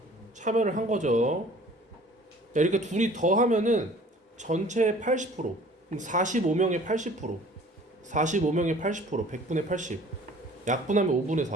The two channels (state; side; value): normal; both; correlation 0.50